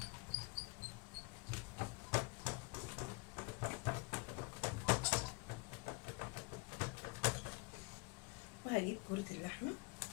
وهجيب كرة اللحمة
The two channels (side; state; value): right; quieter; 28.3 dB